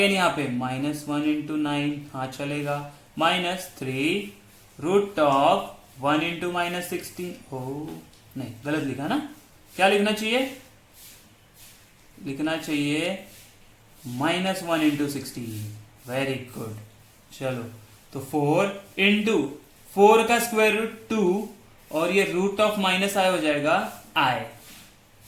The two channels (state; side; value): identical; both; correlation 1.00